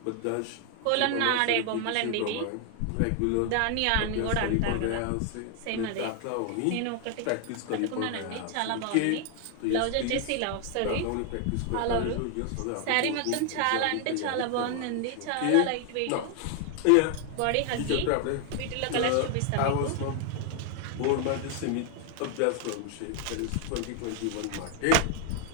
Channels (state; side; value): different; both; correlation 0.00